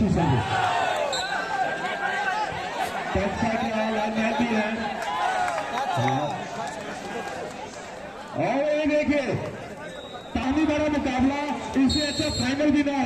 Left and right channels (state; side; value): identical; both; correlation 1.00